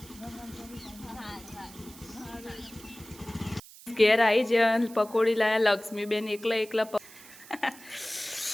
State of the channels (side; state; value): right; noise; hiss, 19 dB below the sound